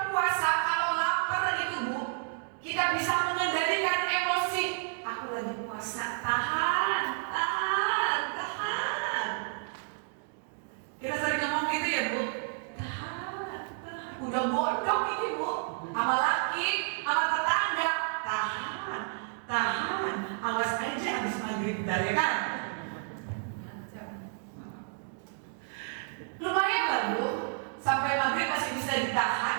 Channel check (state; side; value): silent; left; 57 dB below the other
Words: puasa, kalau lapar itu Bu, kita bisa mengendalikan emosi. Aku lagi puasa, tahan. Kita sering ngomong gitu ya Bu, tahan. Udah bodoh ini Bu, sama laki, sama tetangga, tahan. Awas aja habis maghrib dari kan. Lumayan lah Bu, sampai maghrib masih bisa